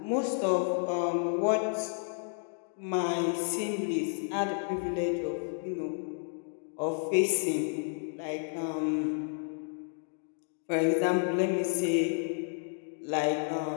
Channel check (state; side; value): silent; right; 57 dB below the other